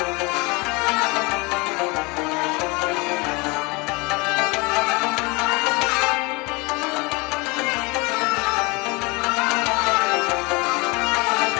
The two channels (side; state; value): right; quieter; 26.6 dB